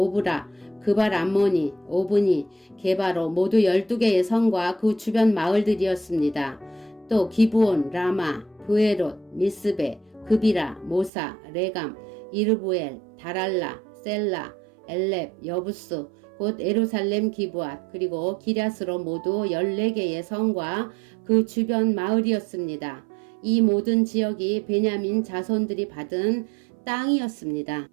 그발 암모니, 오브니, 게바로 모두 12개의 성과 그 주변 마을들이었습니다. 또 기브온, 라마, 브에롯, 미스베, 그비라, 모사, 레감, 이르부엘, 다랄라, 셀라, 엘렙, 여부스, 곧 예루살렘 기브앗, 그리고 기랴스로 모두 14개의 성과 그 주변 마을이었습니다. 이 모든 지역이 베냐민 자손들이 받은 땅이었습니다.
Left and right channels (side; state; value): left; drops out; at 11.1 s